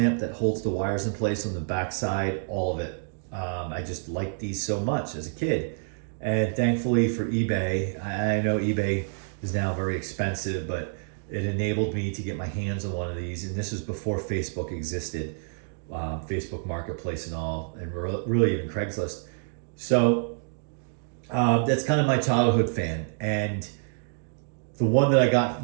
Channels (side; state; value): left; silent; digital silence